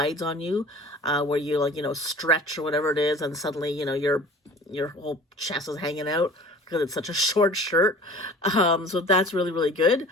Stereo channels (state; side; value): normal; both; correlation 0.44